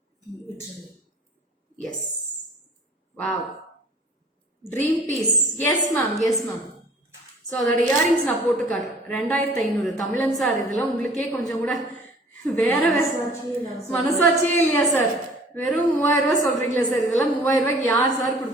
Yes. Wow. Dream piece. Yes ma'am. Yes ma'am. So அதோட earrings நான் போட்டு காட்டுறேன். 2500 தமிழன் sir. இதெல்லாம் உங்களுக்கே கொஞ்சம் கூட வேற மனசாட்சியே இல்லையா சார்? வெறும் 3000 ரூபாய் சொல்றீங்களா சார்? இதெல்லாம் 3000 ரூபாய்க்கு யார் சார்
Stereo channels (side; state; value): both; normal; correlation 0.50